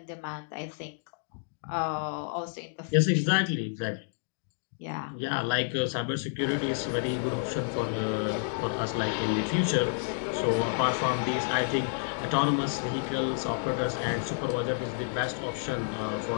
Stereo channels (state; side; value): silent; right; digital silence